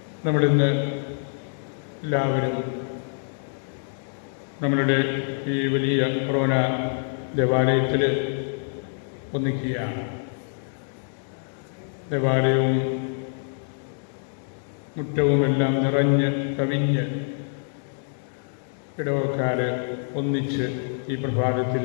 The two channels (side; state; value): right; silent; digital silence